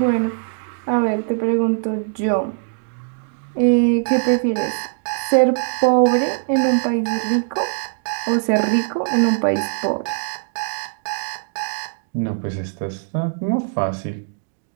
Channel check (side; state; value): left; silent; digital silence